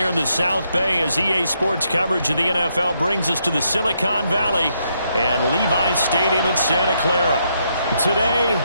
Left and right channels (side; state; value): both; inverted; correlation -0.77